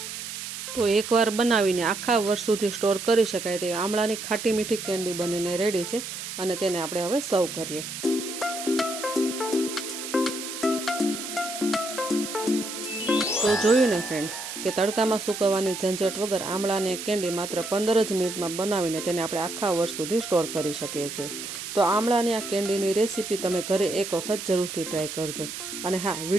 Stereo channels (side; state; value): right; noise; hiss, 8 dB below the sound